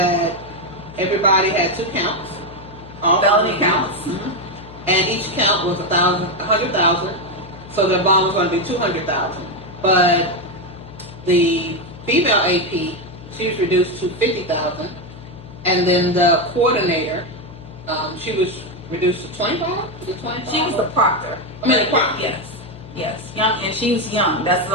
everybody had 2 counts, all felony counts, and each count was $100,000. So the bond was going to be $200,000. But the female AP, she was reduced to $50,000, and then the coordinator, she was reduced to $25,000. She was the proctor. The proctor. Yes. Yes, young, and she's young. That's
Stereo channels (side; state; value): left; noise; hum, 17 dB below the sound